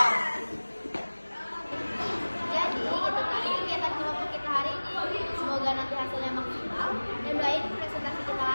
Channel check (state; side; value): inverted; both; correlation -1.00